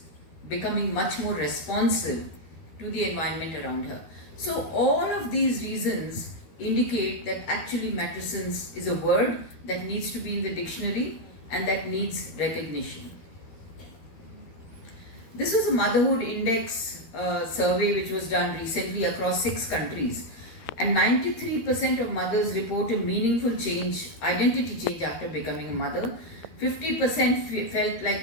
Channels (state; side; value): late; right; 13 ms